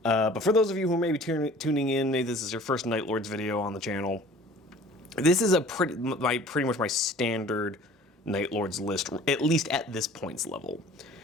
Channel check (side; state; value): both; normal; correlation 0.47